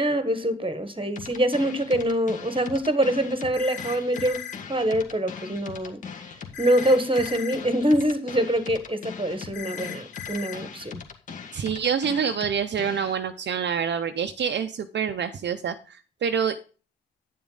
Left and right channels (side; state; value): both; normal; correlation 0.52